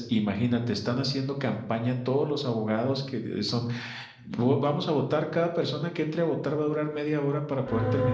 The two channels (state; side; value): identical; both; correlation 1.00